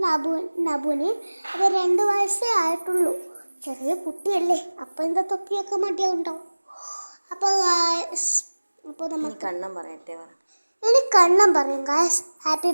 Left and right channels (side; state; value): both; inverted; correlation -1.00